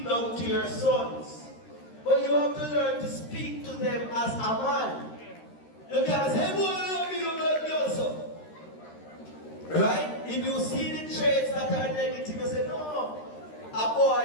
down to your sons, but you have to learn to speak to them as a man. You can't say, boy, love me, you love me also. Right? If you see the traits that are negative, you say, no, a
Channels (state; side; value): late; right; 13 ms